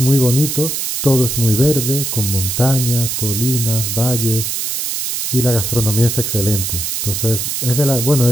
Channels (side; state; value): right; noise; hiss, 2 dB below the sound